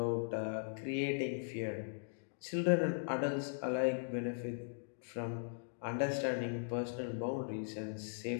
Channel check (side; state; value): right; silent; digital silence